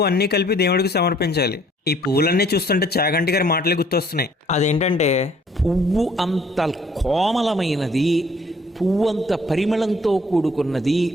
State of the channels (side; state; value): both; normal; correlation 0.59